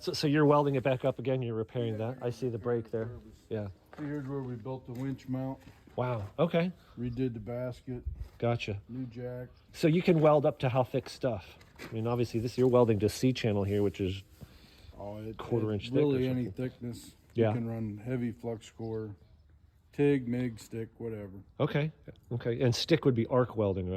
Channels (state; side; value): identical; both; correlation 1.00